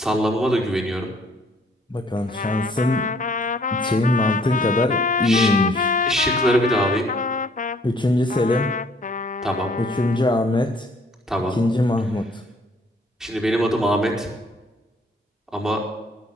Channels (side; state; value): both; normal; correlation 0.61